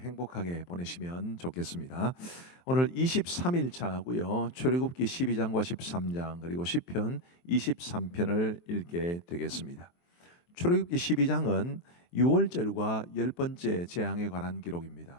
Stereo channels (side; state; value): right; late; 23 ms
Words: 보내시면 좋겠습니다. 오늘 23일 차고요. 출애굽기 12장과 13장 그리고 시편 23편을 읽게 되겠습니다. 출애굽기 12장은 6월절과 10번째 재앙에 관한